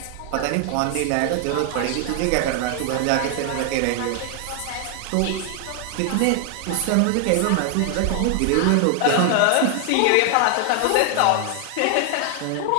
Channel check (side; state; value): both; different; correlation 0.00